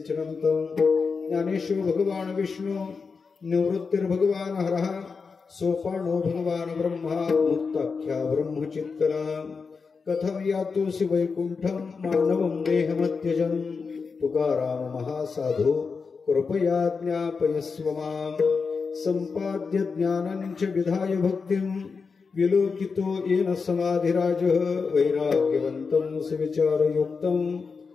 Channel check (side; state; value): right; quieter; 5.0 dB